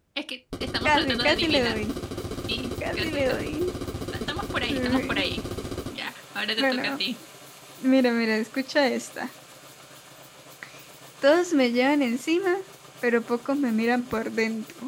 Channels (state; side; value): identical; both; correlation 1.00